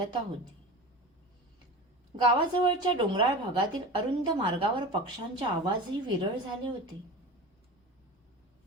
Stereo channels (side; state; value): both; normal; correlation 0.32